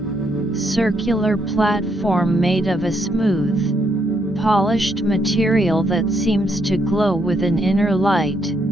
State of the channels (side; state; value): both; normal; correlation 0.74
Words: circular platform made of a smooth, polished material that seems to glow with an inner light.